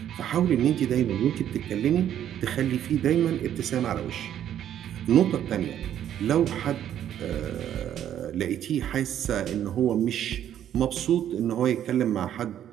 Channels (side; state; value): left; quieter; 10.6 dB